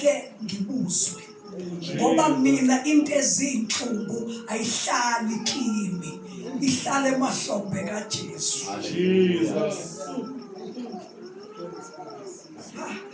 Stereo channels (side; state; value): both; identical; correlation 1.00